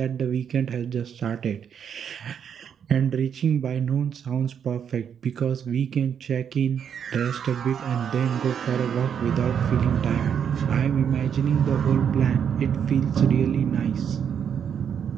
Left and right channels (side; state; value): left; quieter; 8.0 dB